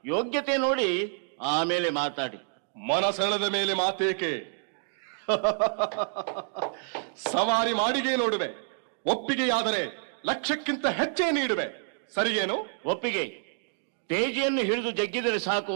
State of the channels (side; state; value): left; silent; digital silence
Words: ಯೋಗ್ಯತೆ ನೋಡಿ ಆಮೇಲೆ ಮಾತಾಡಿ. ಮನಸೆಳೆದ ಮೇಲೆ ಮಾತೇಕೆ? ಸವಾರಿ ಮಾಡಿಗೆ ನೋಡುವೆ. ಒಪ್ಪಿಗೆಯಾದರೆ ಲಕ್ಷಕ್ಕಿಂತ ಹೆಚ್ಚೇ ನೀಡುವೆ. ಸರಿಗೇನು? ಒಪ್ಪಿಗೆ. ತೇಜಿಯನ್ನು ಹಿಡಿದು ಜಗ್ಗಿದರೆ ಸಾಕು,